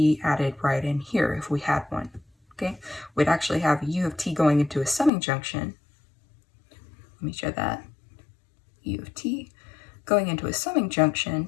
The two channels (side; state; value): right; drops out; at 5.1 s